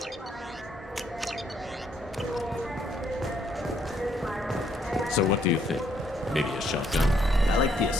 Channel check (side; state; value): both; normal; correlation 0.70